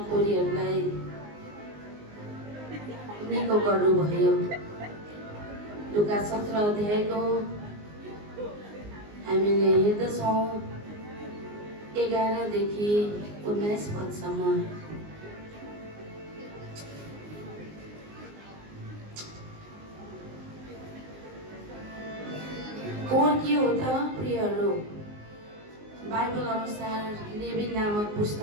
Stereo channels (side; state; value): left; late; 19 ms